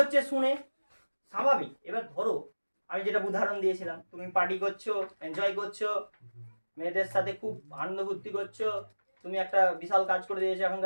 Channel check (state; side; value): inverted; both; correlation -1.00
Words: শুনে স্বাভাবিক, এবার ধরো আমি যেটা উদাহরণ দিয়েছিলাম, তুমি পার্টি করছো, এনজয় করছো, মেয়েদের সাথে খুব আনন্দ ফুর্তি করছো, তুমি একটা বিশাল কাজ করে দিয়েছো,